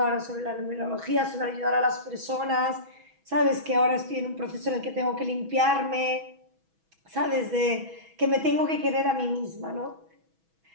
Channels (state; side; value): late; left; 6.1 ms